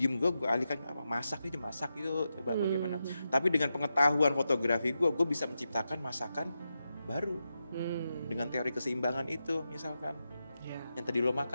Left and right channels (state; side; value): inverted; both; correlation -0.89